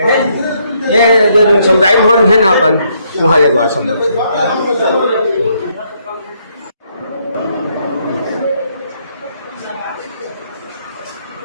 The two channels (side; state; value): both; inverted; correlation -0.72